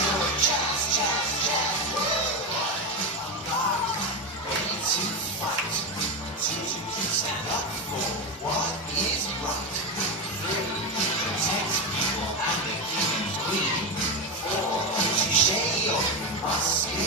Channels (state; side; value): normal; both; correlation 0.13